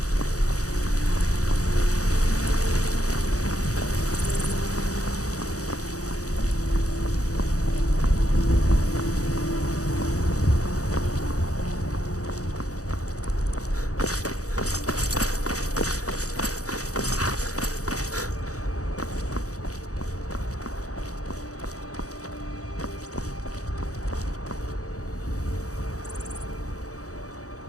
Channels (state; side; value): late; right; 0.66 ms